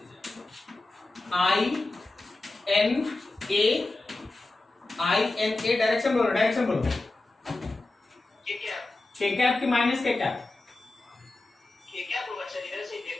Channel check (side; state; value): right; quieter; 3.0 dB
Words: I n a डायरेक्शन बोलो, डायरेक्शन बोलो। ये क्या? k कैप की माइनस k कैप? ये क्या होगा सर? इधर से ही